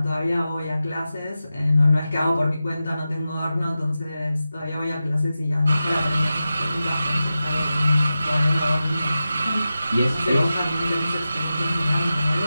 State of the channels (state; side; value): inverted; both; correlation -0.93